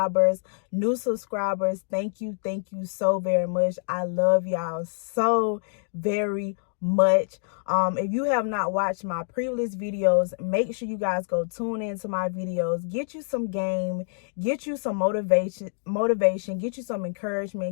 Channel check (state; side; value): silent; right; digital silence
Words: new subscribers. Thank you so very much. I love y'all so very much. If you have not watched my previous videos, make sure you guys go tune into my videos, get you some game, get you some motivation, get you some